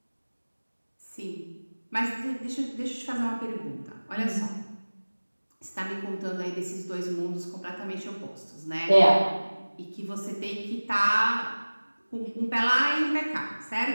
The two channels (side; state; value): both; inverted; correlation -1.00